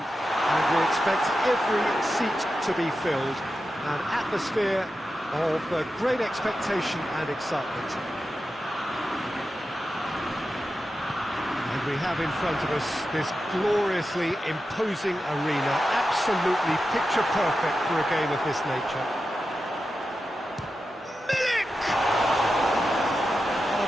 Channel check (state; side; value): normal; both; correlation 0.91